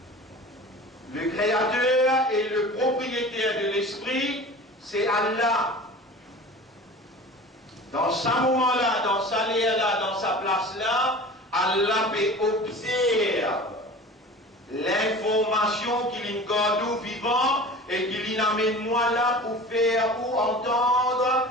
Le Créateur et le propriétaire de l'esprit, c'est Allah. Dans ce moment-là, dans sa là, dans sa place-là, Allah peut observer l'information qu'il nous vivant et qu'il amène moi là pour faire ou entendre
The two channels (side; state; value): both; normal; correlation 0.38